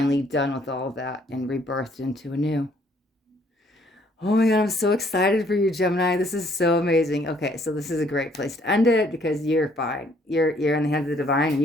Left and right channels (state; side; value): normal; both; correlation 0.64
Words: done with all of that and rebirthed into a new. Oh my God, I'm so excited for you, Gemini. This is so amazing. Okay, so this is a great place to end it because you're fine. You're in the hands of the divine and